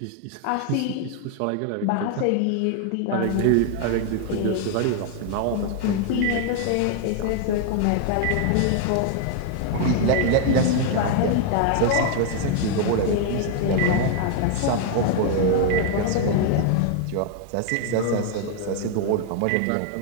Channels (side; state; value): both; different; correlation 0.00